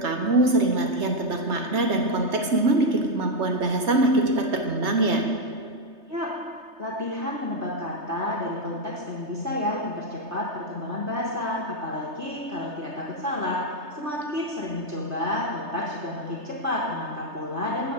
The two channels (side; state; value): left; late; 3.3 ms